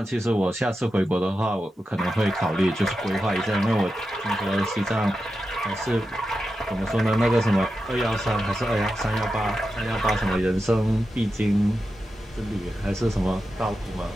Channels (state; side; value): normal; both; correlation 0.90